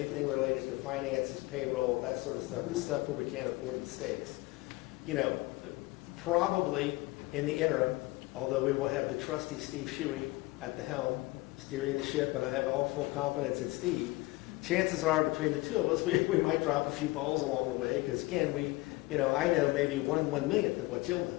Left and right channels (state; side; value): quieter; right; 21.4 dB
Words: related to finances, payroll, that sort of stuff, the stuff where we can't afford mistakes. Probably in the interim, although we will have the trusty Steve Shuey at the helm steering the ship, and I have all full confidence in Steve, chances are between the two of us, we might drop a few balls along the way because, again, I know maybe 1/1,000,000th of what Jill